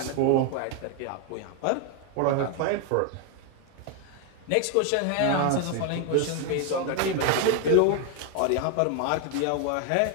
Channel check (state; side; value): different; both; correlation 0.01